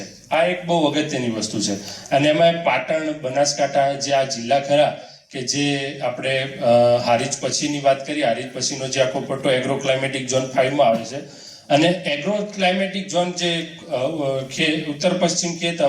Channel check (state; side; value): identical; both; correlation 1.00